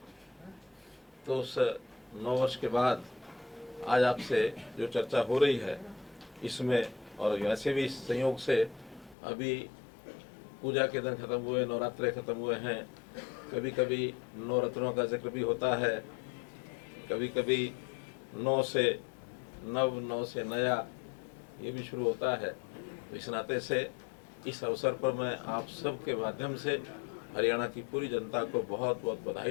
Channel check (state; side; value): drops out; right; at 9.2 s